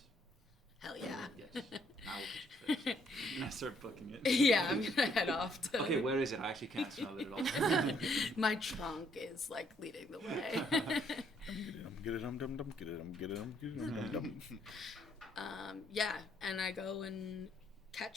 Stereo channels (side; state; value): both; normal; correlation 0.68